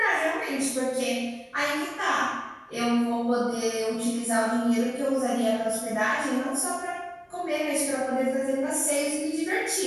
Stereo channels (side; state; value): both; identical; correlation 1.00